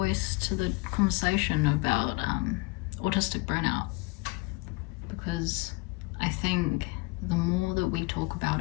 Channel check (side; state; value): right; quieter; 24.6 dB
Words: to the conversation about autistic burnout because I think the more that we talk about